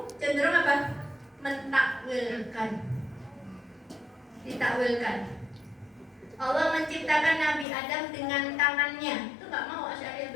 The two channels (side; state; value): right; drops out; at 7.7 s